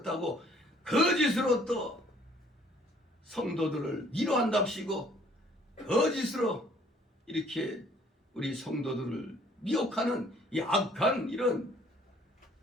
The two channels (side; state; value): both; normal; correlation 0.60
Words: 거짓으로 또 성도들을 위로한답시고 거짓으로 이렇게 우리 성도들을 미혹하는 이 악한 이런